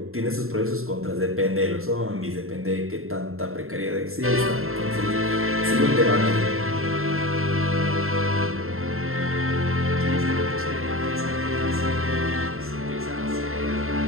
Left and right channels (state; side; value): late; left; 0.62 ms